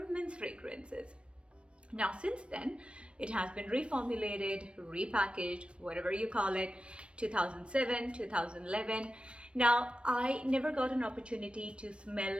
men's fragrances. Now since then it has been reformulated, repackaged, whatever you call it, 2007, 2011. Now I never got an opportunity to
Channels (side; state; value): left; late; 0.059 ms